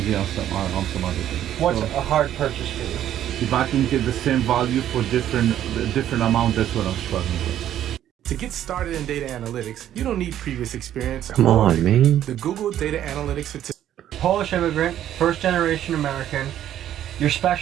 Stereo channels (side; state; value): left; quieter; 11.4 dB